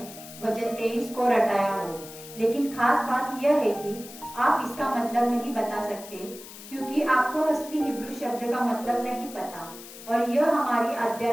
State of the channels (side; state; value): left; noise; hiss, 15 dB below the sound